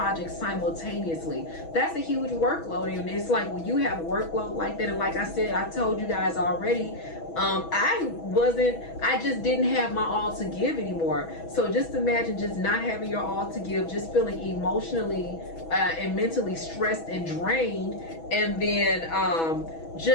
simultaneously. That's a huge workload. And it's like, when you have a workload like that, and like I said, I told you guys already, I just didn't have my all to give anymore. So just imagine just not having your all to give, just feeling emotionally and mentally stressed and drained, and then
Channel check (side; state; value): right; late; 6.1 ms